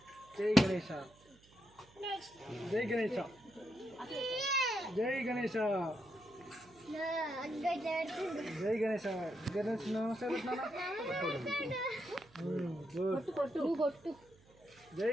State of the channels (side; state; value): right; noise; hum, 27 dB below the sound